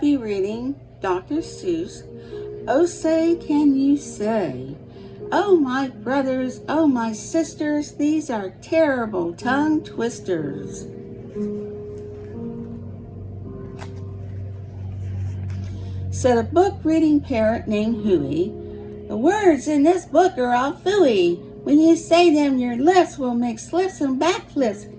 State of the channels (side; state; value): both; identical; correlation 1.00